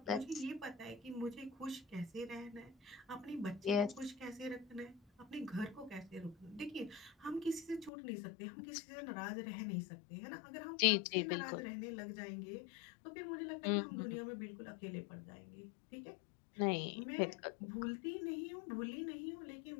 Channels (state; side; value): drops out; right; at 7.9 s